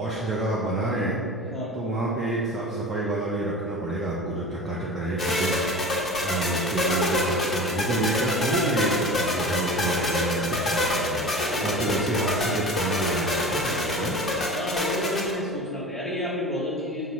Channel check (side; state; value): both; normal; correlation 0.35